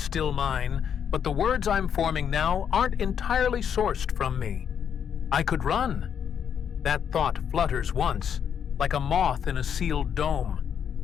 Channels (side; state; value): right; quieter; 8.1 dB